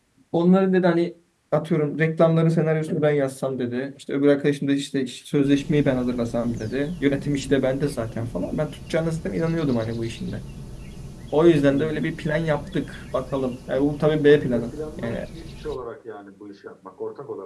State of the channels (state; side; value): identical; both; correlation 1.00